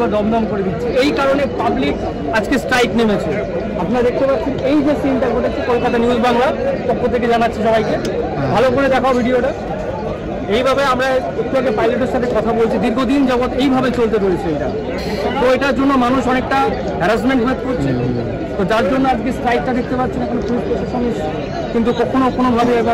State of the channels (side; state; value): both; identical; correlation 1.00